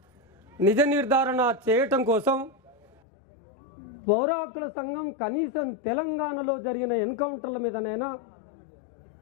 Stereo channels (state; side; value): drops out; right; at 2.9 s